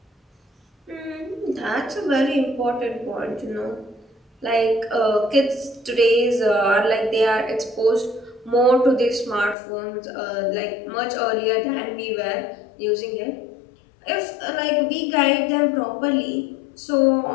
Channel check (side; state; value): right; drops out; at 9.6 s